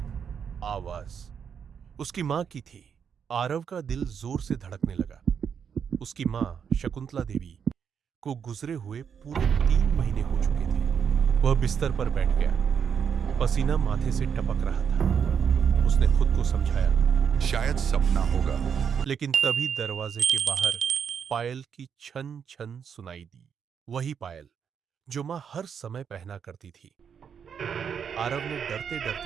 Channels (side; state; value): left; quieter; 7.3 dB